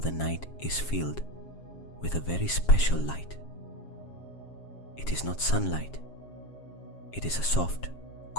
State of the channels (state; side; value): late; right; 7.4 ms